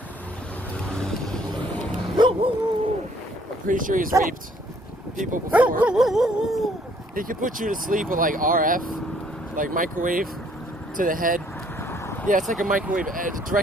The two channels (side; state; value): both; normal; correlation 0.63